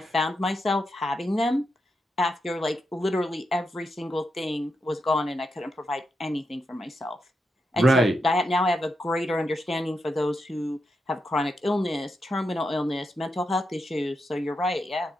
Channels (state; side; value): normal; both; correlation 0.85